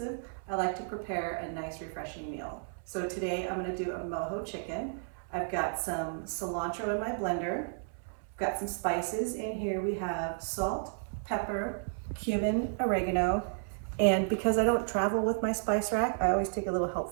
I like to prepare a nice refreshing meal. So today I'm going to do a mojo chicken. I've got some cilantro in my blender. I've got some spices in here. We have salt, pepper, cumin, oregano, and because I don't travel with my spice rack, I always take a little help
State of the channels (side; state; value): left; silent; 56 dB below the other